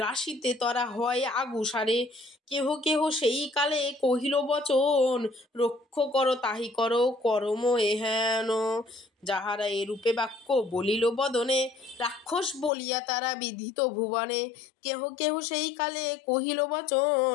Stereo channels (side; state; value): right; drops out; at 12.7 s